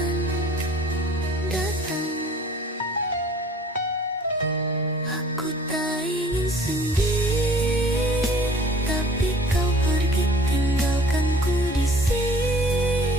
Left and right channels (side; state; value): both; normal; correlation 0.50